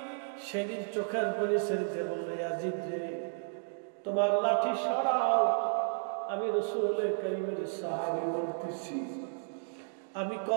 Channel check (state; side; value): silent; left; digital silence